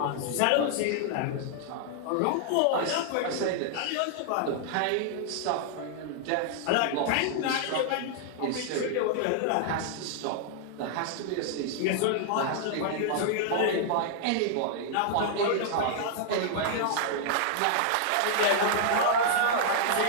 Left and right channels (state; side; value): different; both; correlation -0.01